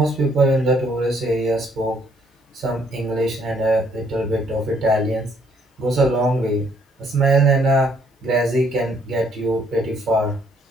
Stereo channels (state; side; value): normal; both; correlation 0.67